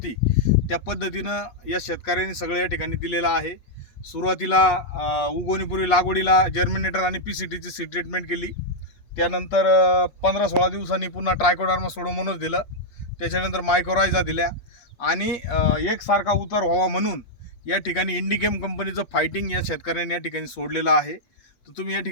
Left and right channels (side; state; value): right; late; 8.4 ms